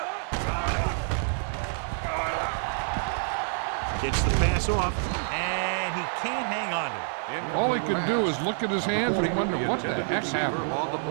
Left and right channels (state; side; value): silent; left; digital silence